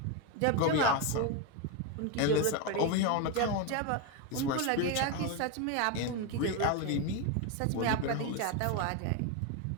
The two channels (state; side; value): different; both; correlation 0.02